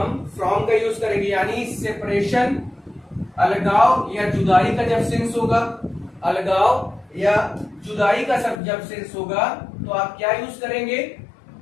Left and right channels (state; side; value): drops out; right; at 8.6 s